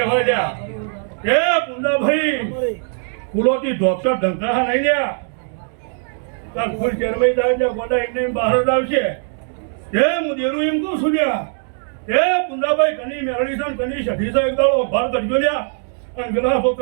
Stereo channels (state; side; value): silent; left; 57 dB below the other